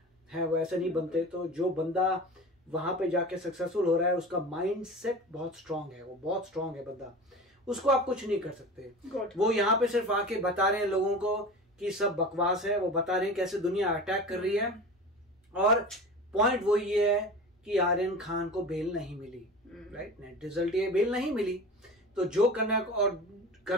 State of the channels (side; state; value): both; normal; correlation 0.34